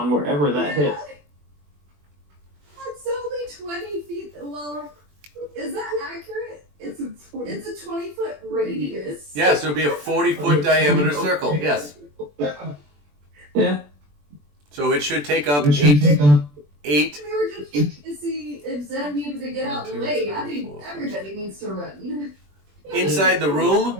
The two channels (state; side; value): late; left; 20 ms